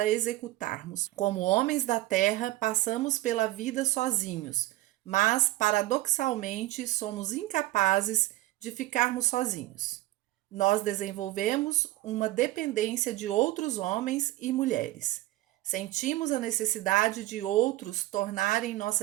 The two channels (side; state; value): left; quieter; 17.3 dB